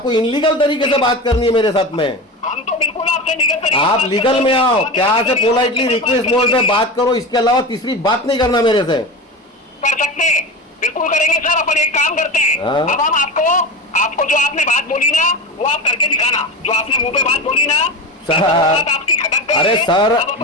इनलीगल तरीके से बात करनी है मेरे साथ में। हम तो बिल्कुल आपसे आपसे लीगल तरीके से आप बात लीगल करो। में आओ, आप प्यार से लीगल पोलाइटली तरीके से रिक्वेस्ट बात मोड में करेंगे। बात करो, इसके अलावा तीसरी बात नहीं करना मेरे से। कर सकते हैं, बिल्कुल करेंगे सर। अपन एक काम करते हैं, हाँ। अब हम आपको जो आपने बात बोली ना वो आप करके दिखाना। जो आपने मुंह पे बात बोली ना सर, वो बात आपकी खटक गई अरे है। सर अब अपन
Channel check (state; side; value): normal; both; correlation 0.25